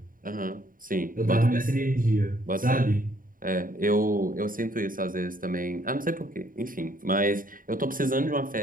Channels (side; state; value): left; late; 0.40 ms